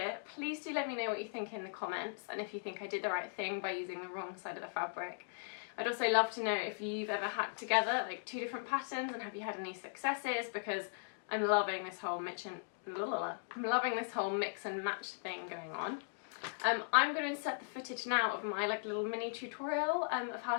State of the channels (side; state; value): right; silent; digital silence